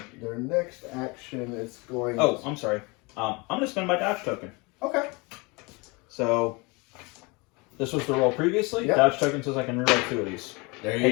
Their next action is going... Oh, I'm sorry. I'm going to spend my dodge token. Okay. So this was the roll previously. Yep. Dodge token says I can reroll 2 of these. There you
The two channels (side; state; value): right; quieter; 27.4 dB